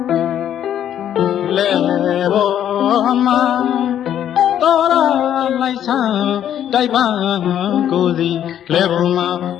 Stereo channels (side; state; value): right; quieter; 10.3 dB